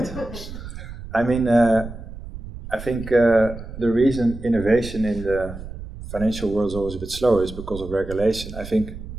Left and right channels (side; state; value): right; noise; rumble, 11 dB below the sound